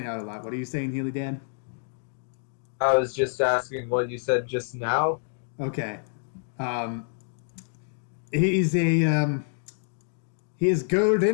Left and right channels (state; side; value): silent; right; digital silence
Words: out a lot. What are you saying, Healy Dan? I was just asking what you said just now. Okay. He's a, he is